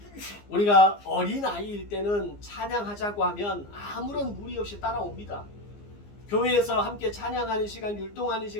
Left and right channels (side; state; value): right; late; 15 ms